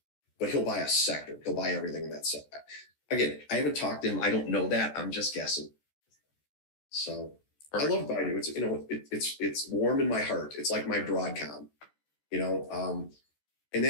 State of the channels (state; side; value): late; right; 14 ms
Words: But he'll buy a sector. He'll buy everything in that sector. Again, I haven't talked to him. I don't know that. I'm just guessing. So perfect. I love Baidu. It's warm in my heart. It's like my Broadcom, and